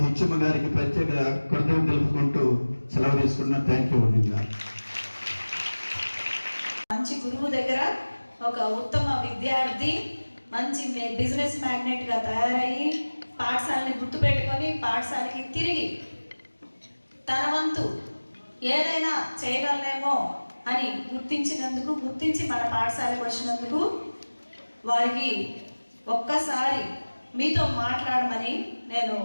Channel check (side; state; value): both; inverted; correlation -1.00